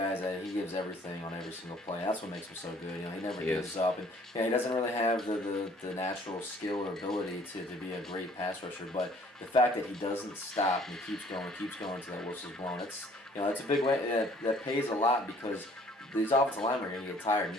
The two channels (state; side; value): normal; both; correlation 0.57